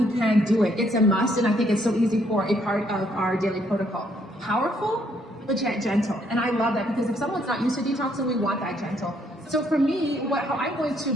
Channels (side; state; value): both; normal; correlation 0.69